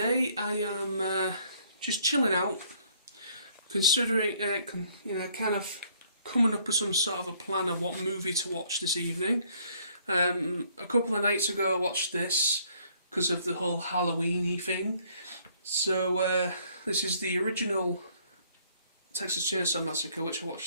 I am just chilling out, considering, kind of coming up with some sort of a plan of what movie to watch this evening. A couple of nights ago I watched this because of the whole Halloween-y thing. So this is the original Texas Chainsaw Massacre, which I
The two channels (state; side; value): inverted; both; correlation -0.63